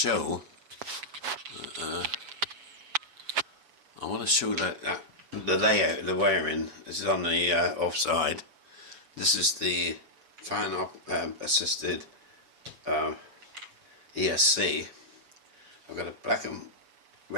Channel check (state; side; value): late; left; 6.9 ms